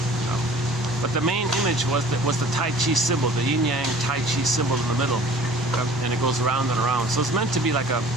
But the main image was the Tai Chi symbol, the yin-yang Tai Chi symbol in the middle, and it goes around and around. So it's meant to be like a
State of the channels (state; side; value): normal; both; correlation 0.48